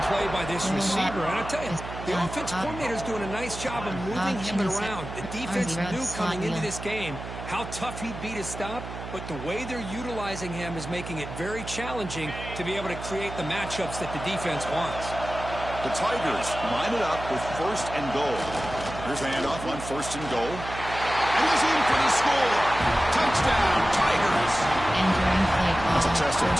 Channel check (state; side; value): noise; right; hum, 10 dB below the sound